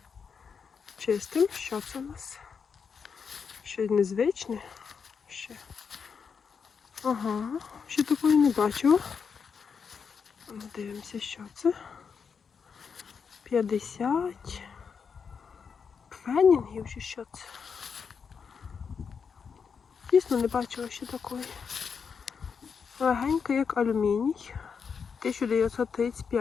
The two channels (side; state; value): right; quieter; 6.1 dB